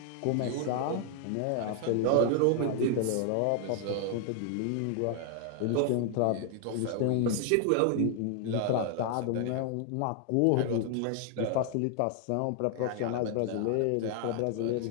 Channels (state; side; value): different; both; correlation 0.00